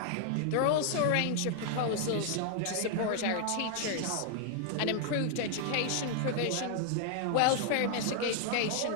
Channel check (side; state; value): both; different; correlation 0.00